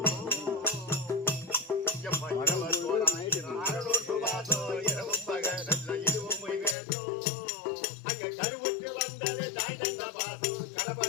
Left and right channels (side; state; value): right; drops out; at 6.8 s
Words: கருவுற்று வந்தது தாய் தந்த பாசம்